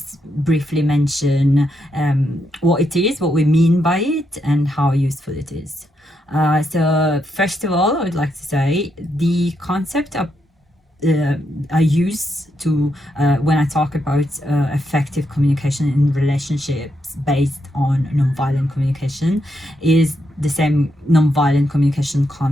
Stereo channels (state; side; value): normal; both; correlation 0.81